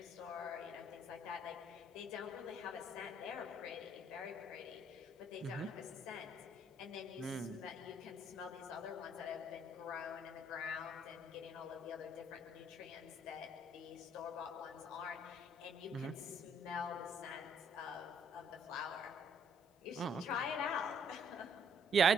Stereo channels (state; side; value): normal; both; correlation 0.66